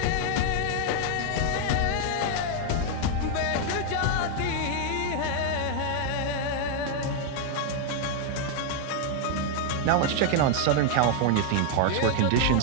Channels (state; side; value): different; both; correlation 0.00